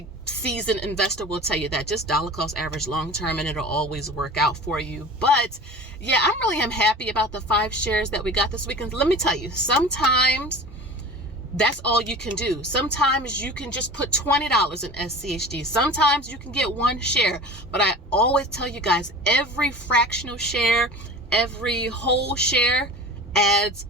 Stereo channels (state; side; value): normal; both; correlation 0.37